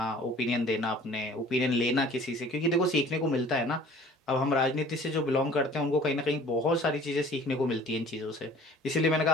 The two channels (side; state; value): both; normal; correlation 0.49